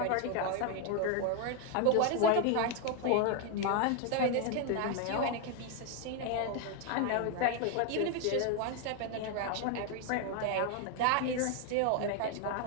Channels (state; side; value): different; both; correlation 0.01